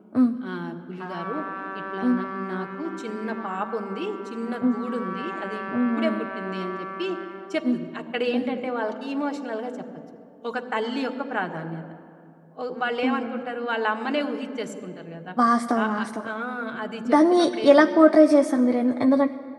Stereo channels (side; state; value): both; identical; correlation 1.00